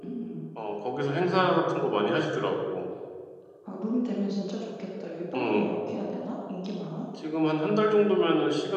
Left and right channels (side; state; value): both; identical; correlation 1.00